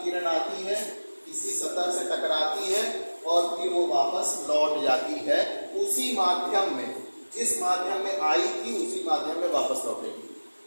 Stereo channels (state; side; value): inverted; both; correlation -1.00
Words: किरण आती है, किसी सतह से टकराती है और फिर वो वापस लौट जाती है उसी माध्यम में, जिस माध्यम में आई थी उसी माध्यम में वापस लौटेगी,